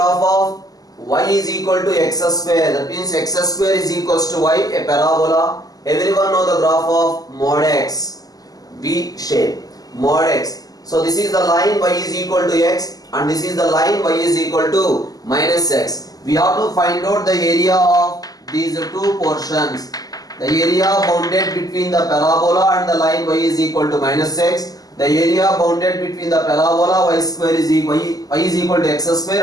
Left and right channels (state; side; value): late; right; 0.18 ms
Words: of y is equal to x square. That means x square is equals to y, a parabola. Everyone know the graph of mod x. V shape, mod x. So this is the line y is equal to x and this is the line y is equal to minus x. We have to find out the area of these two portions. The area bounded between the parabola and the line y is equal to minus x. The area bounded between the parabola y square is equal, y is equal to x square